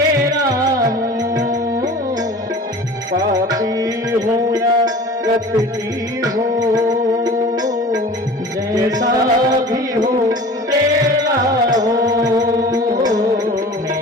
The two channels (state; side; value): normal; both; correlation 0.41